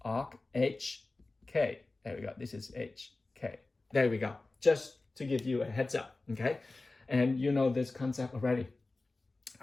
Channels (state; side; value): quieter; right; 3.3 dB